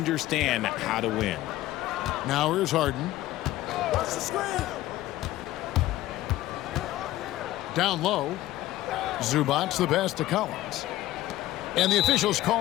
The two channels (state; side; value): quieter; right; 15.7 dB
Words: how to win. Now here's Harden. Down low. Zubac the pass to Collins. And the officials